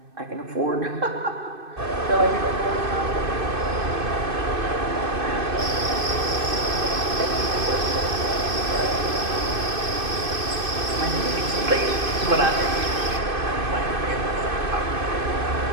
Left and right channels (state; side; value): late; left; 2.6 ms